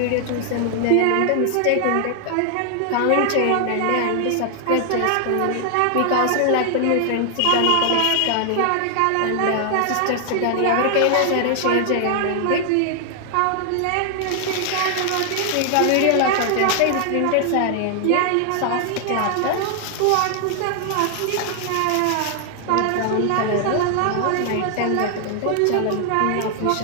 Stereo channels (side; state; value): both; different; correlation 0.00